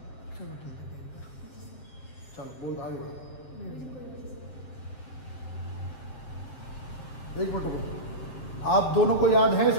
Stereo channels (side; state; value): right; late; 7.8 ms